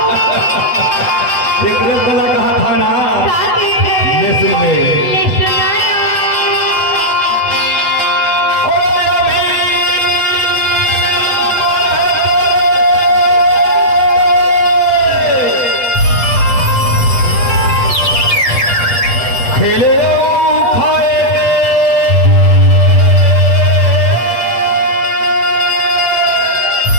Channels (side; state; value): right; late; 8.1 ms